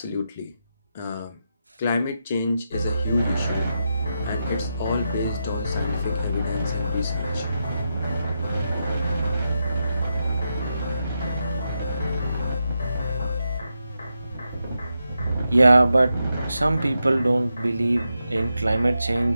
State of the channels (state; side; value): inverted; both; correlation -0.86